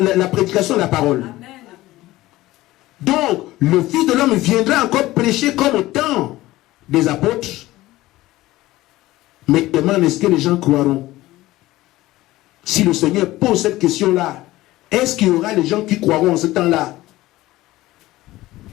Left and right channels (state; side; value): quieter; right; 17.3 dB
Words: la prédication de la parole. Amen. Donc, le Fils de l'homme viendra encore prêcher comme au temps des apôtres. Mais demande, est-ce que les gens croiront? Si le Seigneur pose cette question-là, est-ce qu'il y aura des gens qui croiront en ce temps-là?